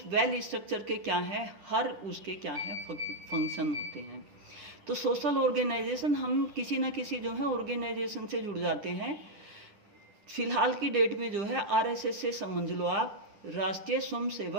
वेल स्ट्रक्चर के क्या है हर उसके क्या है फंक्शन होते हैं। तो सोशल ऑर्गेनाइजेशन हम किसी न किसी जो है ऑर्गेनाइजेशन से जुड़ जाते हैं। फिलहाल की डेट में जो है आरएसएस से समझ लो आप, राष्ट्रीय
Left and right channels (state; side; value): late; left; 10 ms